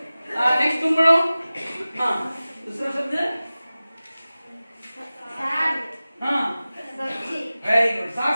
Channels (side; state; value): both; inverted; correlation -0.97